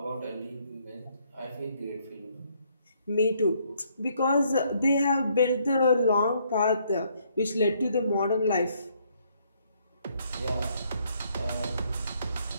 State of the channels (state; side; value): inverted; both; correlation -0.69